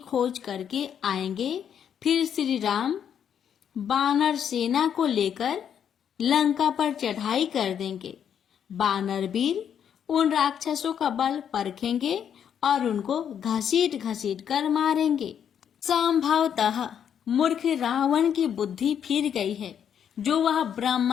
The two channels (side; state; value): right; quieter; 8.6 dB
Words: करके आएंगे। फिर श्री राम वानर सेना को लेकर लंका पर चढ़ाई कर देंगे। वानर वीर उन राक्षसों का बल परखेंगे और उनको घसीट घसीट कर मारेंगे। संभवतः मूर्ख रावण की बुद्धि फिर गई है, जो वह